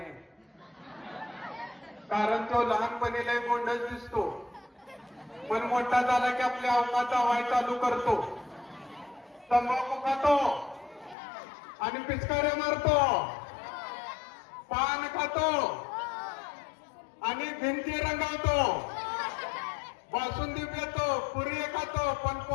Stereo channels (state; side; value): drops out; right; at 11.2 s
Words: आहे. कारण तो लहानपणी लय गोंडच दिसतो पण मोठा झाला की आपल्या अवकाचा वाय चालू करतो, तंबाखू खातो आणि पिचकाऱ्या मारतो, पान खातो आणि भिंती रंगवतो, बासुंदी पितो, पुरी खातो पण